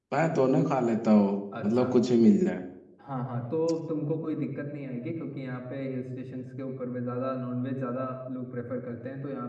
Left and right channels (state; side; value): identical; both; correlation 1.00